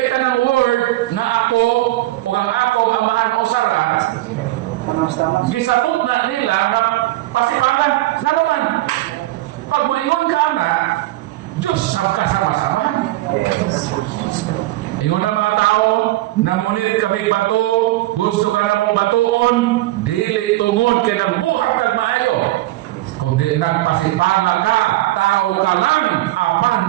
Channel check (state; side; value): quieter; left; 17.5 dB